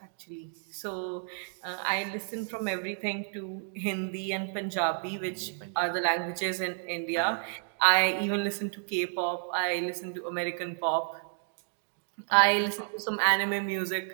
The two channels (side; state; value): left; silent; 55 dB below the other